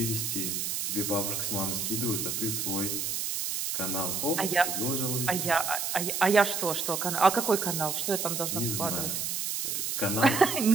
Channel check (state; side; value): noise; right; hiss, 1 dB below the sound